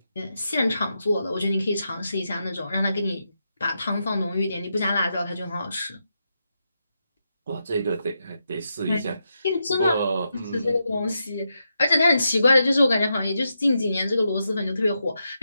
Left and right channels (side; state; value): both; inverted; correlation -0.85